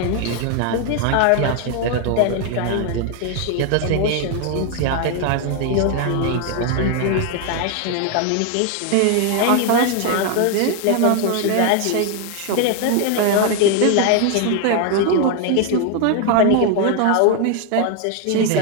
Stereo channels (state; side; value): different; both; correlation 0.01